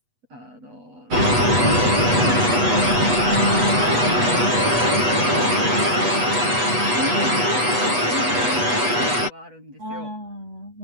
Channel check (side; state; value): left; late; 8.2 ms